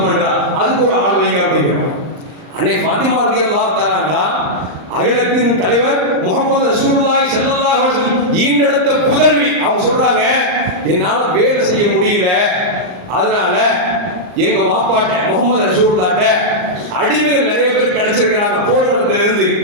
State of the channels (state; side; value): late; left; 39 ms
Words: பண்றா, அதுக்கு ஒரு ஆள் வைங்க அப்படிங்கிறோம். அன்னை ஃபாத்திமா ரலியல்லாஹு தஆலா அன்ஹா அகிலத்தின் தலைவர் முஹம்மது ரசூலுல்லாஹி ஸல்லல்லாஹு அலைஹி வஸல்லம் ஈண்டெடுத்த புதல்வி. அவங்க சொல்றாங்க, என்னால வேலை செய்ய முடியல, அதனால எங்க வாப்பாட்ட முகமது ரசூலுல்லாஹ்ட்ட அடிமைகள் நிறைய பேர் கிடைச்சிருக்கிறாங்க, போர்க்களத்துல இருந்து